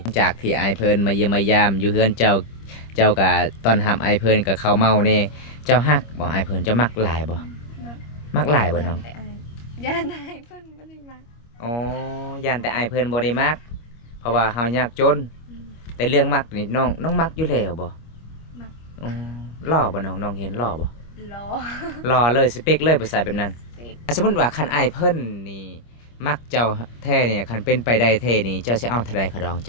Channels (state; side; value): late; right; 25 ms